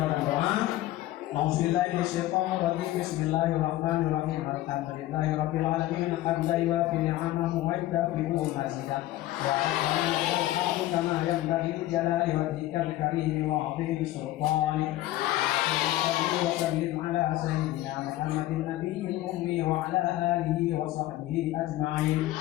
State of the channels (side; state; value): right; quieter; 15.6 dB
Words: doa A'udzubillahi minasyaitonir rajim. Bismillahirrahmanirrahim. Alhamdulillahi rabbil alamin. Hamdan yuwafi ni'amahu wa yukafi'u mazidah. Ya Rabbana lakal kama yanbaghi li jalali wajhikal karim wa 'azimi sultanik. وسلم على سيدنا محمد النبي الأمي وعلى آله وصحبه أجمعين.